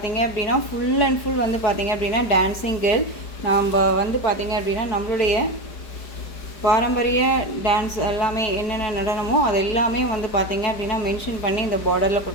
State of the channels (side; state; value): right; late; 4.9 ms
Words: அப்படின்னா ஃபுல் அண்ட் ஃபுல் வந்து பார்த்தீங்க அப்படின்னா டான்ஸிங் கேர்ள். நம்ம வந்து பார்த்தீங்க அப்படின்னா நம்மளுடைய பாரம்பரிய டான்ஸ் எல்லாமே என்னென்ன நடனமோ அது எல்லாமே வந்து பார்த்தீங்க அப்படின்னா மென்ஷன் பண்ணி இந்த பார்டரில்